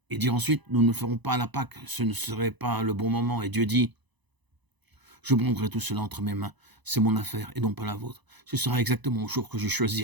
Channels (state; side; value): late; left; 1.0 ms